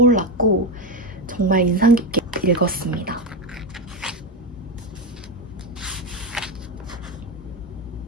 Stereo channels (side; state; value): both; normal; correlation 0.14